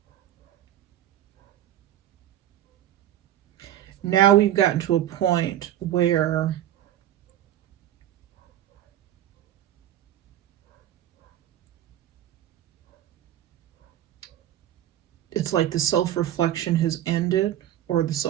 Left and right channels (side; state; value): left; quieter; 12.1 dB